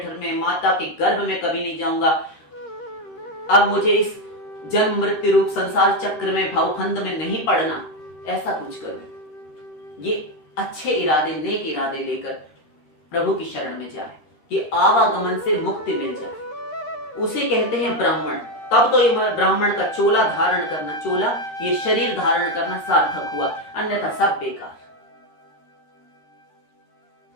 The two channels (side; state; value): right; late; 13 ms